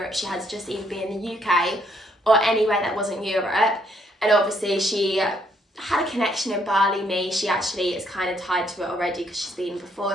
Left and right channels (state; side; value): normal; both; correlation 0.70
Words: she had to just either be in the UK or anywhere that wasn't Europe. And obviously she had a connection in Bali. She actually is kind of tied to it already because she's been before